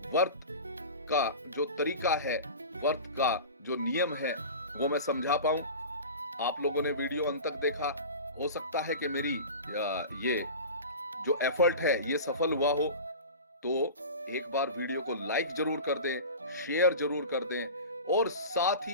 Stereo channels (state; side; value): inverted; both; correlation -0.32